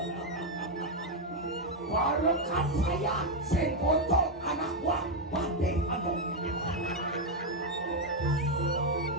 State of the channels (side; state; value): both; normal; correlation 0.02